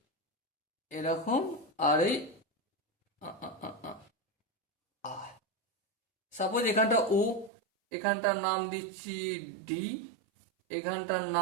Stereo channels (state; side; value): drops out; left; at 7.5 s